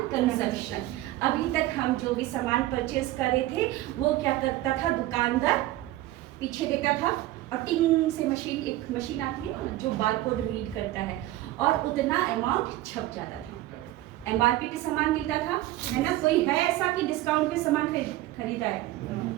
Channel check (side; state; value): left; quieter; 16.0 dB